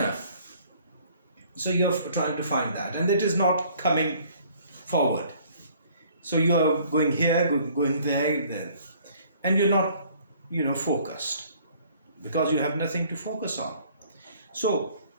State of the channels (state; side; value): inverted; both; correlation -0.57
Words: So you're trying to find that, and it is not coming forward. So you're going here, going there, and you're not, focused, because you have nothing to focus on. So